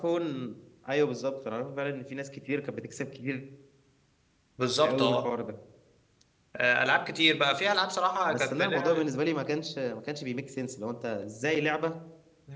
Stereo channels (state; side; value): identical; both; correlation 1.00